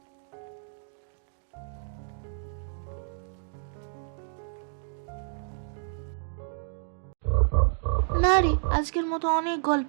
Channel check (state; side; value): silent; left; digital silence